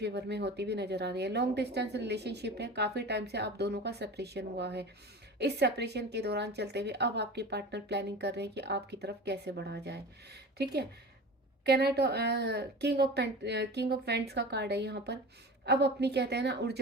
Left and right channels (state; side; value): normal; both; correlation 0.35